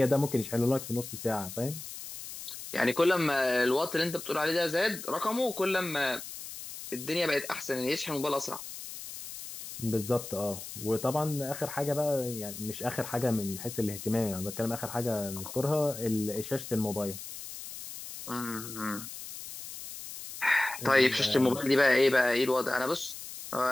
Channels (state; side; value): noise; left; hiss, 11 dB below the sound